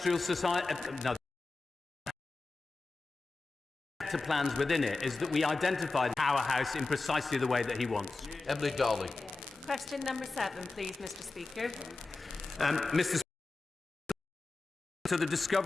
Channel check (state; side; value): quieter; right; 3.6 dB